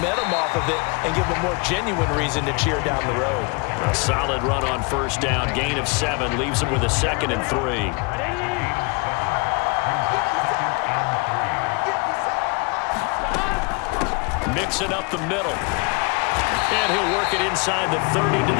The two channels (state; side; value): quieter; right; 31.1 dB